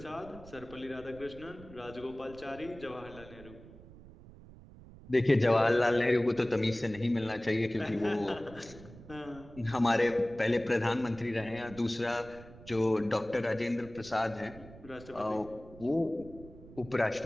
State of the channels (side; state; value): right; noise; rumble, 18 dB below the sound